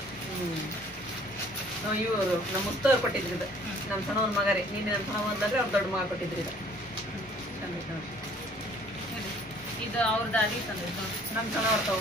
ಇವರು ನಮ್ಮ ಮುತ್ತವ್ರು ಕೊಟ್ಟಿದ್ರು ಇದು ನಮ್ಮ ಸಣ್ಣವ್ರ ಮಗ ರೀ ನೀನು ನಮ್ಮ ಸಣ್ಣ ಬಂದ್ರೆ ಅವ್ರ ದೊಡ್ಡ ಮಗ ಕೊಟ್ಟಿದ್ರು ಇದು ಇದು ಅವ್ರ ದಾಡಿ ತಂದಿದ್ದು ನಮ್ಮ ಸಣ್ಣವ್ರು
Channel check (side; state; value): both; normal; correlation 0.56